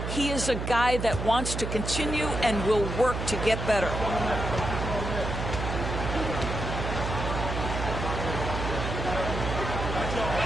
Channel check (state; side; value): noise; right; hum, 4 dB below the sound